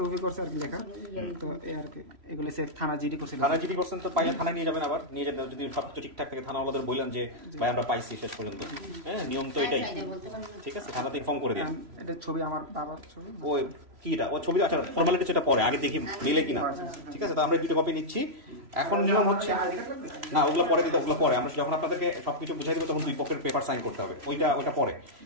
করছে আর কি লেখা, তো এই আর কি এগুলো সে থানা জিডি করছিল। থানা জিডি করছেন তো পাইলে থানায় নিয়ে যাবেন, আবার নিয়ে যাবেন যদি সবকিছু ঠিকঠাক থাকে থানাওয়ালাদের বললেন যে ভাই আমরা পাইছি শেষ পর্যন্ত, হ্যাঁ নিয়ম তো এটাই, ঠিক আছে থানাতে ইনফর্ম করে দিন। এটা ছবি আমার বাবার ছবি, ওই কিটা ও ছবি, আচ্ছা ফর্মালিটি সেটা পরে, আগে দেখি মিলে কিনা, ঠিক আছে তো আমরা দুটো কপি নিচ্ছি। এখন নিয়ম হচ্ছে না ওগুলো পরে দিতে, ওগুলো পরে আমরা যখন আপনাদেরকে সবকিছু বুঝাই দেবো তখন 2 পক্ষের পেপার সাইন করতে হবে, ওইটা পরে।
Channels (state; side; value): late; left; 3.0 ms